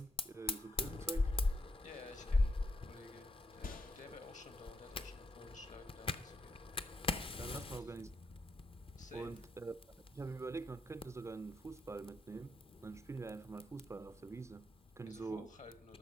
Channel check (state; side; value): normal; both; correlation 0.78